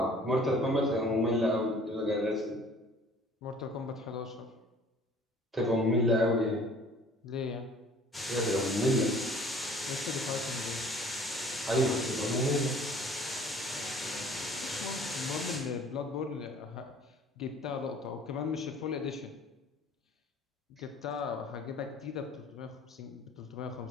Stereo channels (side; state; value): both; normal; correlation 0.51